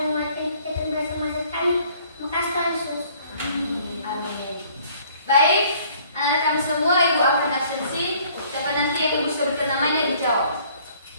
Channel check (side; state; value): both; inverted; correlation -0.58